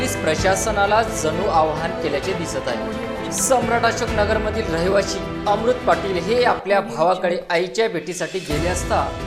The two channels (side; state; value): both; identical; correlation 1.00